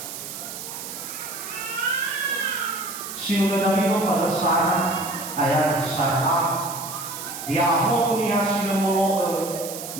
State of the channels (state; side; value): noise; right; hiss, 9 dB below the sound